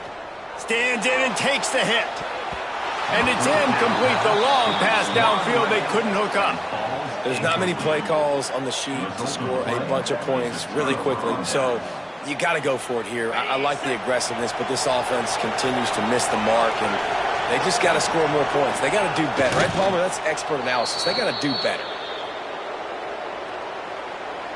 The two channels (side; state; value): both; identical; correlation 1.00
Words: Stands in and takes the hit. And it's incomplete. The long pass downfield they couldn't hook up. There's not many play calls on the sheet to score a bunch of points really quickly. So you got to go for it here. I like the aggressiveness, but this offense continues to miss the mark, and they just got to score more points. They got to do better. Right, Palmer? That's expert analysis. They got to do better.